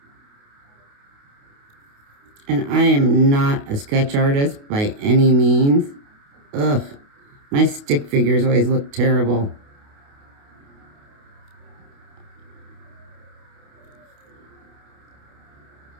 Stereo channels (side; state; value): left; late; 28 ms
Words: And I am not a sketch artist by any means. Ugh, my stick figures always look terrible.